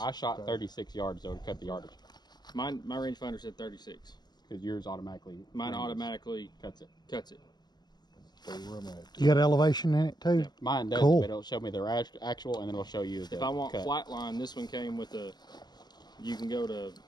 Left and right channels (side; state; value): right; late; 0.20 ms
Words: I shot 36 yards though to cut the yardage. My rangefinder said 36. Because yours automatically. Mine automatically cuts it. cuts it. You got elevation in it too? Yeah. Mine does, Cool. but it'll show me their actual, and then it'll show you the If I want cut. flat line, this one came with a, you can go to